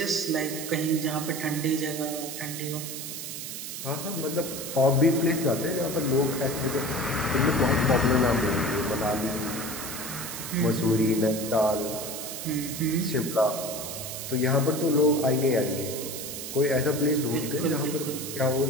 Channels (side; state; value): right; noise; hiss, 7 dB below the sound